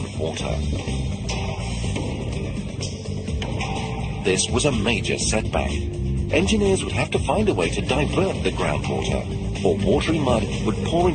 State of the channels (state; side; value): identical; both; correlation 1.00